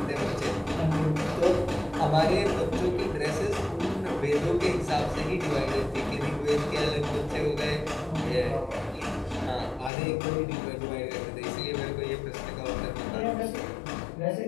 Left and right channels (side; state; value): right; drops out; at 9.9 s